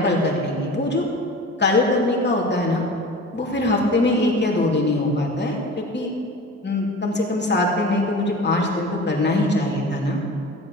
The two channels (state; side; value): normal; both; correlation 0.37